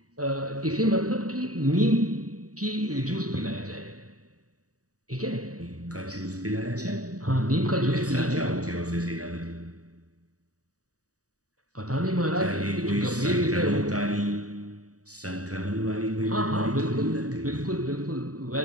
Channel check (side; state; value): left; late; 0.66 ms